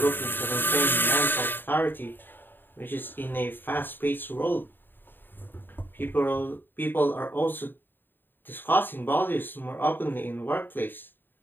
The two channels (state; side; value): late; right; 0.094 ms